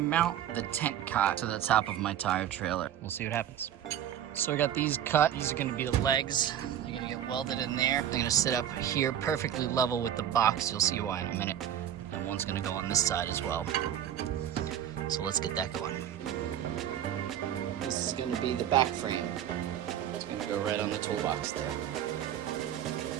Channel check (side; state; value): left; quieter; 10.3 dB